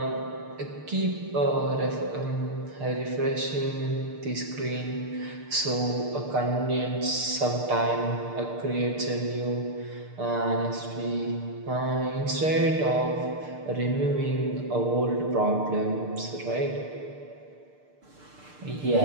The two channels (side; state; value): left; late; 6.7 ms